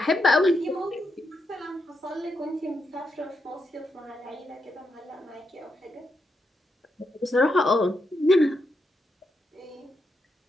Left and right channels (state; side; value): normal; both; correlation 0.83